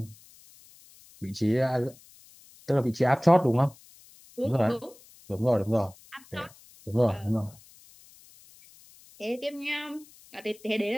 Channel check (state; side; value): noise; left; hiss, 25 dB below the sound